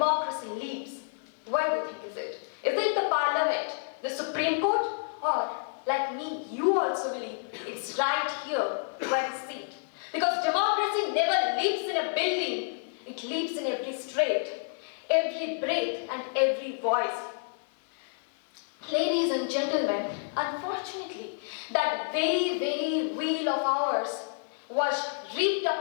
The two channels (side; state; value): right; silent; 58 dB below the other